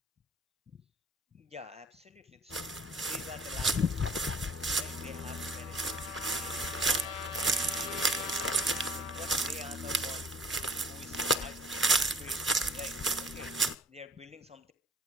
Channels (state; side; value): normal; both; correlation 0.51